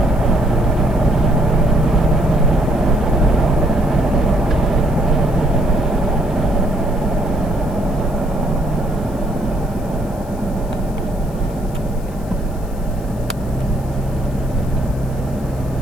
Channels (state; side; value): noise; left; hiss, 24 dB below the sound